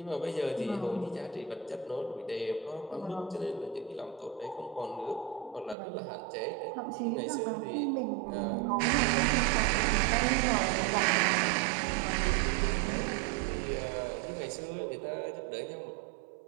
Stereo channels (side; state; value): left; drops out; at 5.8 s